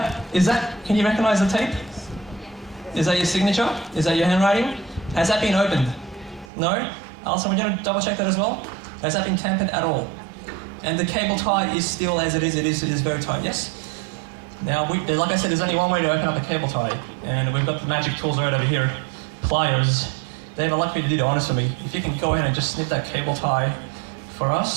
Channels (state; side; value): drops out; left; at 6.5 s